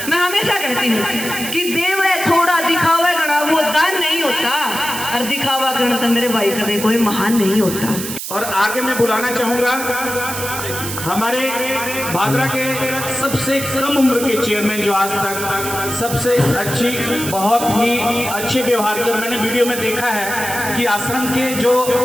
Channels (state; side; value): noise; right; hiss, 7 dB below the sound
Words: मैं हमेशा कहती हूँ कि देव है थोड़ा दिखावा गणा वो दान नहीं होता, और दिखावा करना तो मेरे भाई कदे कोई महान नहीं होता। और आगे मैं बुलाना चाहूंगा हमारे भादरा के सबसे कम उम्र के चेयरमैन, जो आज तक सबसे अच्छी बहुत ही अच्छे व्यवहार के, और मैंने वीडियो में देखा है कि आश्रम के जो